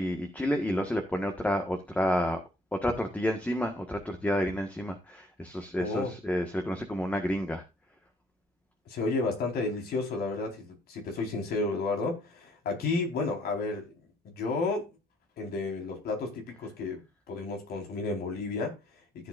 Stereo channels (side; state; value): both; normal; correlation 0.64